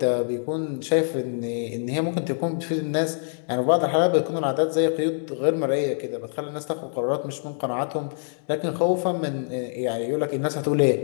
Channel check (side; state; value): right; silent; digital silence